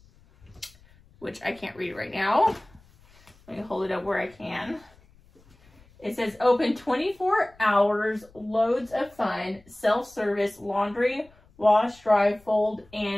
which I can't read right now. Let me hold it up where I can. It says open 24 hours, loads of fun, self-service, laundry, wash, dry, fold,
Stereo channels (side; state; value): left; noise; rumble, 28 dB below the sound